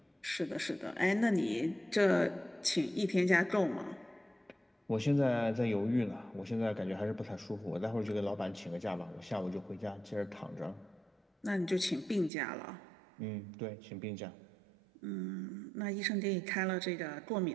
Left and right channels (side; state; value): left; drops out; at 12.3 s